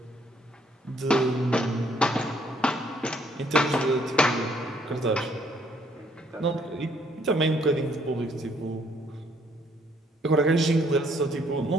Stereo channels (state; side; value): normal; both; correlation 0.66